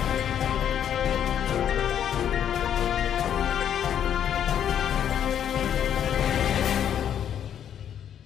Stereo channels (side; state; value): right; quieter; 9.5 dB